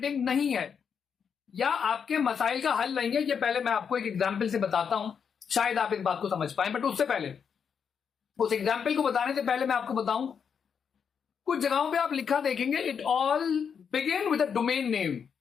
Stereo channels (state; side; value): quieter; right; 6.9 dB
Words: नहीं है या आपके मसाइल का हल नहीं है। ये पहले मैं आपको एक एग्जांपल से बताता हूं, शायद आप इस बात को समझ पाए। बट उससे पहले, उस एग्जांपल को बताने से पहले मैं आपको बताऊं, कुछ जगहों पे आप लिखा देखेंगे it all begin with a domain name.